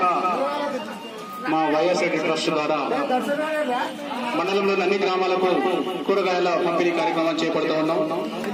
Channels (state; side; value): identical; both; correlation 1.00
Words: మా వైఎస్ఆర్ ట్రస్ట్ ద్వారా మండలంలోని అన్ని గ్రామాలకు కూరగాయల పంపిణీ కార్యక్రమం చేపడుతూ ఉన్నాం.